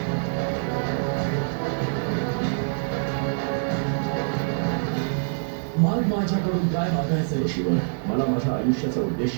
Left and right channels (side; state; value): left; silent; 62 dB below the other